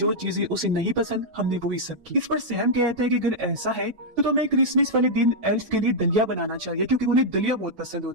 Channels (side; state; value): left; late; 9.1 ms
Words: चीजें उसे नहीं पसंद हमने वही सब की। इस पर सैम कहता है कि अगर ऐसा है तो तुम्हें क्रिसमस वाले दिन एल्फ के लिए दलिया बनाना चाहिए, क्योंकि उन्हें दलिया बहुत पसंद